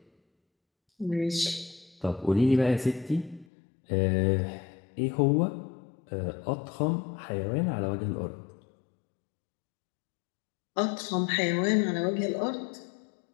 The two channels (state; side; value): drops out; right; at 3.5 s